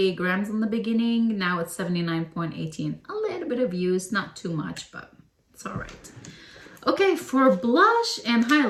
grams in the beginning. Now it's 79.18. A little bit of use, not too much, but it's all right. Okay, for blush and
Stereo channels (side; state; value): both; identical; correlation 1.00